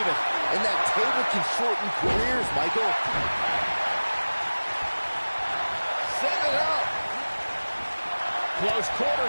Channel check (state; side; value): inverted; both; correlation -1.00